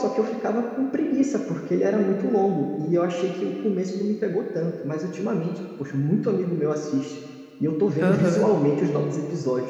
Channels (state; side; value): identical; both; correlation 1.00